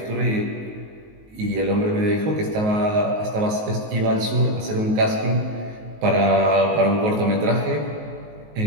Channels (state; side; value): late; left; 19 ms